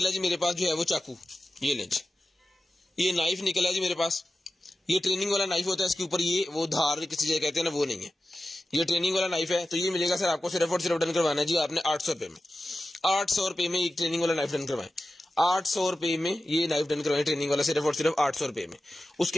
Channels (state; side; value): normal; both; correlation 0.94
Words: जी मेरे पास जो है वो चाकू, ये लें जी, ये नाइफ निकला जी मेरे पास। ये ट्रेनिंग वाला नाइफ होता है, इसके ऊपर ये वो धार किसी जगह कहते हैं ना, वो नहीं है, ये ट्रेनिंग वाला नाइफ है। तो ये मिलेगा सर आपको सिर्फ और सिर्फ डन करवाना है जी आपने 800 रुपए में, 800 रुपए में एक ट्रेनिंग वाला नाइफ डन करवाएं, 800 रुपए में ये नाइफ डन करवाएं ट्रेनिंग वाला सिर्फ और सिर्फ 800 रुपए में।